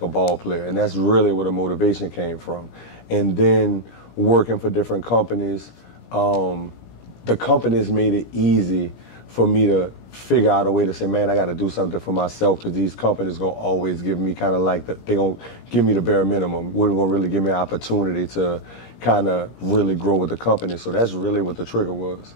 ball player. And that's really where the motivation came from. And then working for different companies, the companies made it easy for me to figure out a way to say, man, I got to do something for myself, because these companies going to always give me kind of like, they going to give me the bare minimum. Wouldn't going to really give me an opportunity to kind of really grow with the company. So that's really what the trigger was.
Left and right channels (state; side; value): late; right; 17 ms